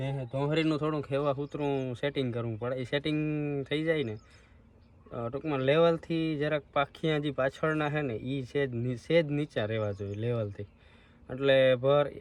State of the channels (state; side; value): identical; both; correlation 1.00